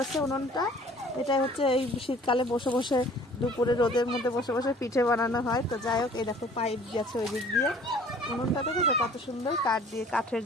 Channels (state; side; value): normal; both; correlation 0.52